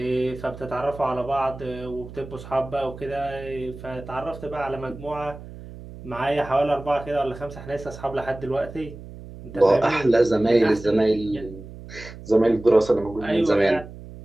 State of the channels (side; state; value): right; noise; hum, 15 dB below the sound